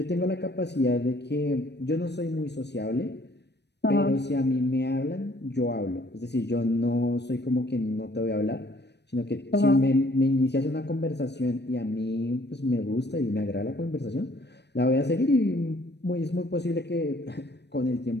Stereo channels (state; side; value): late; right; 0.50 ms